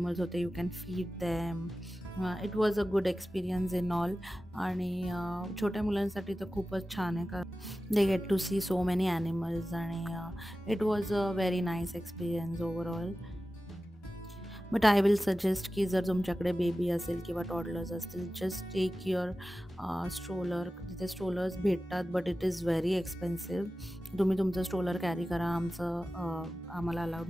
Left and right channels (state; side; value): normal; both; correlation 0.95